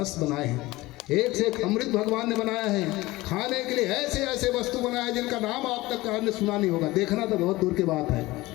बनाए हैं, एक से एक अमृत भगवान ने बनाया है। खाने के लिए ऐसे ऐसे वस्तु बनाए जिनका नाम आप तक आपने सुना नहीं होगा, देखना तो बहुत दूर की बात है।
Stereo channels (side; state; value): right; quieter; 19.5 dB